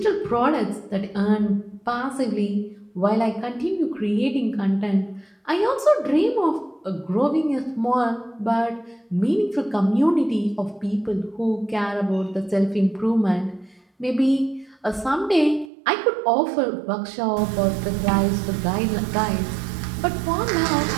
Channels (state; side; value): drops out; left; at 15.7 s